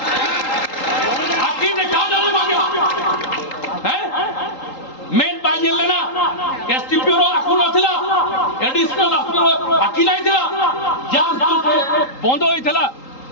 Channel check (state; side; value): late; right; 3.8 ms